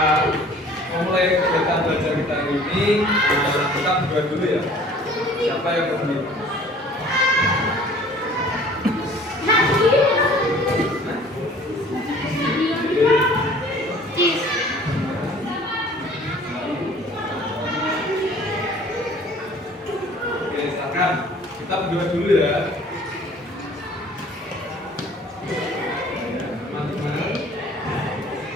memulai kegiatan belajar kita ini, kita berdua dulu ya. Siapa yang berani? Oke, silakan. Kita berdua dulu ya. Teman-teman,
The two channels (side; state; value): both; normal; correlation 0.50